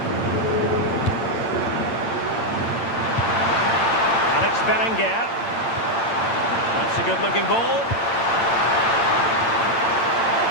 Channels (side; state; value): right; late; 8.8 ms